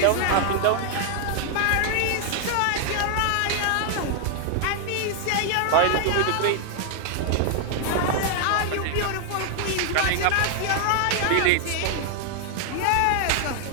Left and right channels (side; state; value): both; different; correlation 0.00